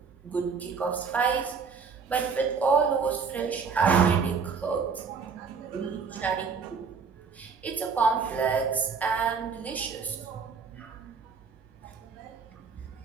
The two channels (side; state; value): left; quieter; 5.5 dB